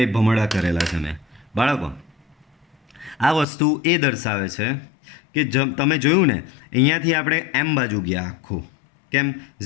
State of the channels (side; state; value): right; drops out; at 3.5 s